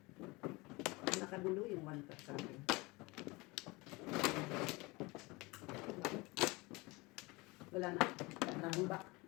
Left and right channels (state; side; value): quieter; right; 24.2 dB